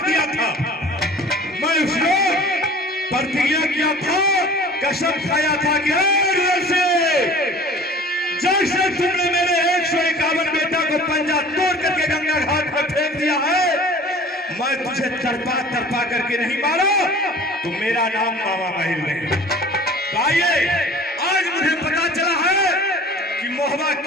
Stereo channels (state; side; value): normal; both; correlation 0.45